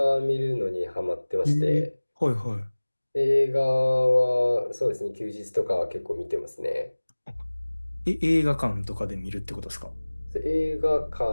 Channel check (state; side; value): inverted; both; correlation -1.00